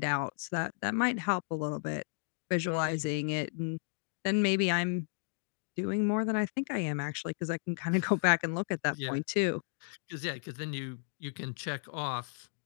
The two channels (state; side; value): silent; right; digital silence